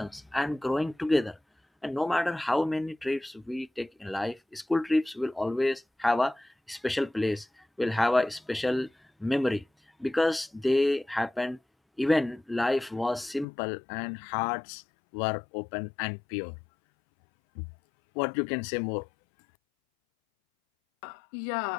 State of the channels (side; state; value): right; drops out; at 13.5 s